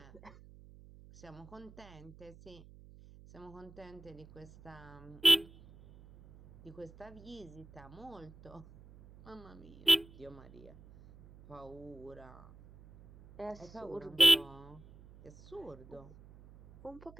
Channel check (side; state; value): right; noise; hum, 21 dB below the sound